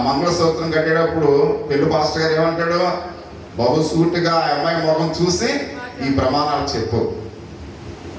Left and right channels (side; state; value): both; identical; correlation 1.00